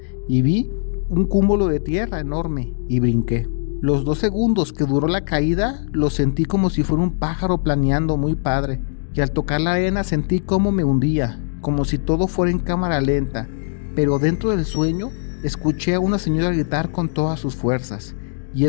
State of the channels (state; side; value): silent; right; digital silence